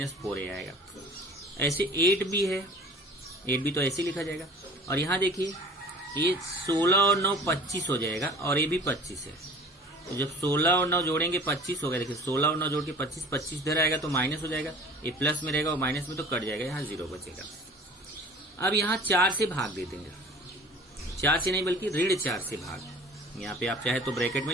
4a आएगा। ऐसे 8b है, 8b तो ऐसे लिखा जाएगा। और यहाँ देखिए ये 16 और 9 25 हो जाएगा, और ये भी 25 है। तो जब 16 और 9 जोड़ेंगे 25 होगा। देखिए 16 और 9 जोड़ के 25 इधर आएगा तो माइनस हो जाएगा, ये प्लस में रहेगा और माइनस में तो कट जाएगा, यहाँ 0 बचेगा। अब यहाँ 4 से भाग दे देंगे, 4 से नहीं बल्कि ऋण 4 से भाग। यहाँ पे आप चाहे तो ब्रैकेट में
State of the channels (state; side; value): normal; both; correlation 0.45